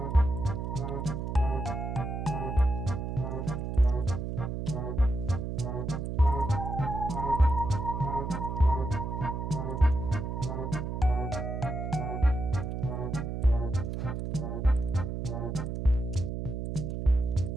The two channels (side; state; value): right; noise; hum, 4 dB below the sound